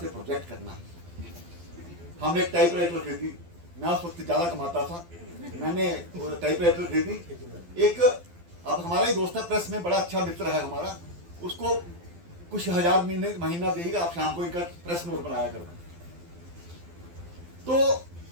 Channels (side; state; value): left; late; 12 ms